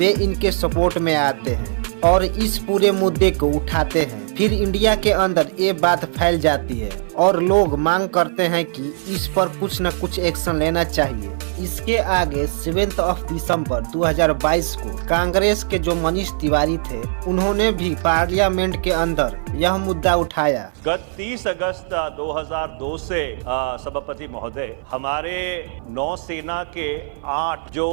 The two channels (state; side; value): silent; left; 56 dB below the other